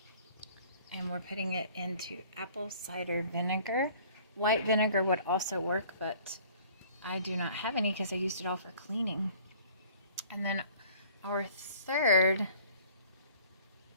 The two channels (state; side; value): inverted; both; correlation -0.52